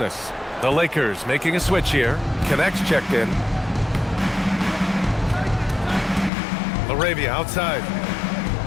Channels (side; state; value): right; drops out; at 6.3 s